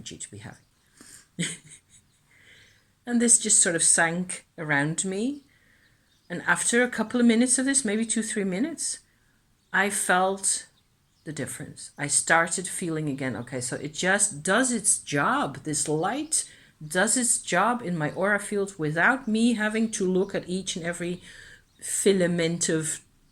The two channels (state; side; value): identical; both; correlation 1.00